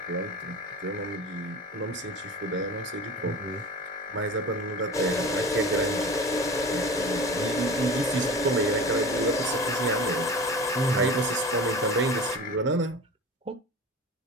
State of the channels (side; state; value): both; normal; correlation 0.35